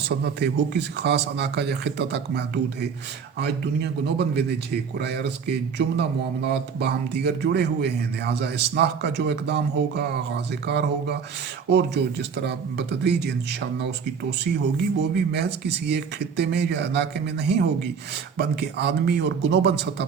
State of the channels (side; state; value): left; quieter; 6.4 dB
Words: ہے، وہ کسی خاص علاقہ یا خطہ تک محدود ہے۔ آج دنیا گلوبل ولیج ہے، کرۂ ارض کے جملہ معاملات باہم دیگر جڑے ہوئے ہیں، لہٰذا اصلاح کا جو اقدام ہوگا، آغاز کار ہوگا، اور جو جس طرح بتدریج انشاءاللہ اس کی توسیع ہوگی، وہ بھی محض کسی ایک خطے میں یا علاقے میں نہیں ہوگی، بلکہ عالمی اور گلوبل سطح